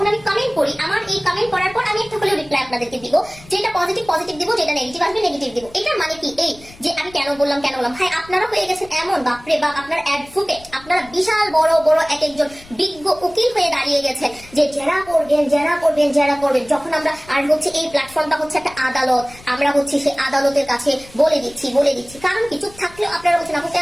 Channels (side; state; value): left; noise; rumble, 22 dB below the sound